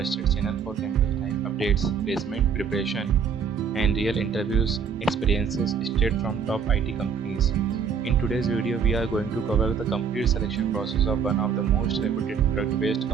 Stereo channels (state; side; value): quieter; left; 6.5 dB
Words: channel for campus life updates, placement preparation, and real interviews experiences straight from top IT companies. In today's video, we are going to cover the complete selection process of one of the most reputed product-based